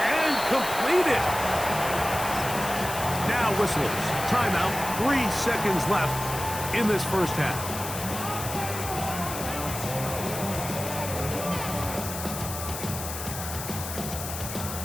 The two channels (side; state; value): left; noise; hiss, 7 dB below the sound